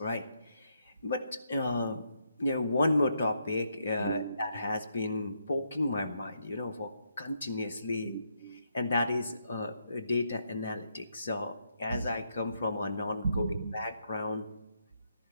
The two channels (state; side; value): inverted; both; correlation -0.78